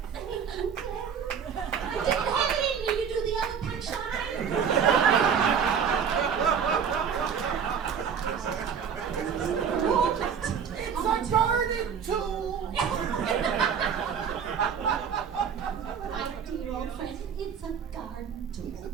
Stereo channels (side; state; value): left; quieter; 7.2 dB